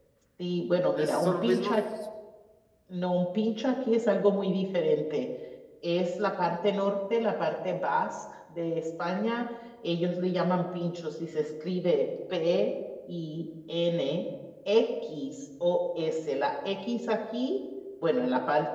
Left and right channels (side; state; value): both; identical; correlation 1.00